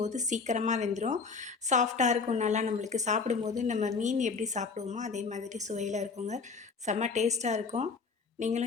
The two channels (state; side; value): quieter; right; 4.8 dB